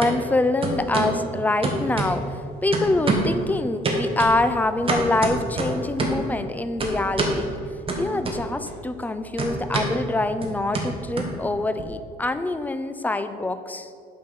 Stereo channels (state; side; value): normal; both; correlation 0.71